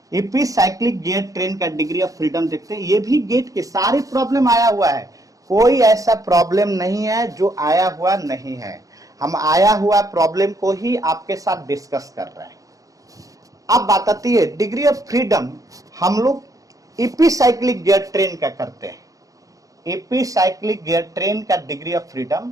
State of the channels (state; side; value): late; left; 0.17 ms